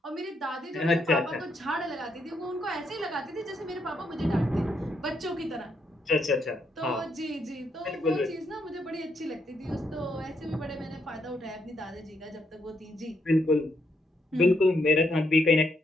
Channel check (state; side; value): normal; both; correlation 0.77